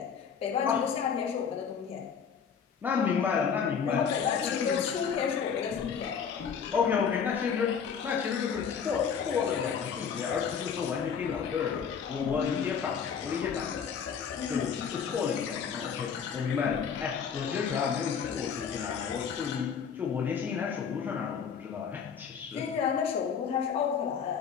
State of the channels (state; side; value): quieter; right; 6.9 dB